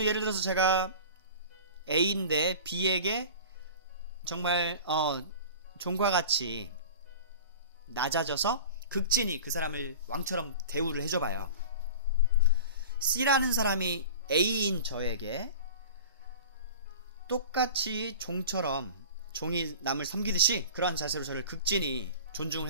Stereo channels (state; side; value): inverted; both; correlation -0.38